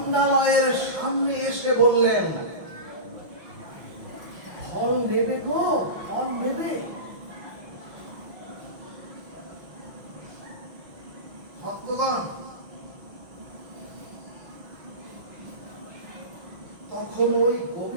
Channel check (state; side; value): late; left; 5.8 ms